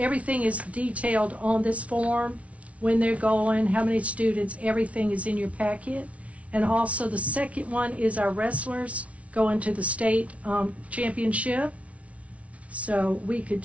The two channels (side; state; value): left; late; 0.065 ms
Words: detailed on this form, when they're going, how many students, everything is in your packet. And also the second one is our wrestlers going to the state championship. So we could